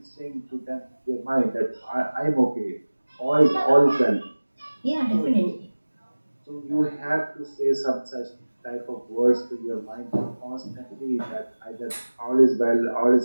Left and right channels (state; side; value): inverted; both; correlation -1.00